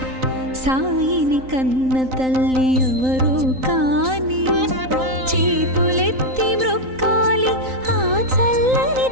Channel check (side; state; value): left; late; 3.9 ms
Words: సాయిని కన్న తల్లి ఎవరో కాని చేతులెత్తి మ్రొక్కాలి ఆ చల్లని